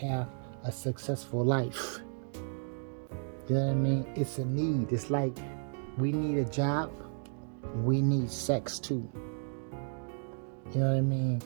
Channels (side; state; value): left; silent; 56 dB below the other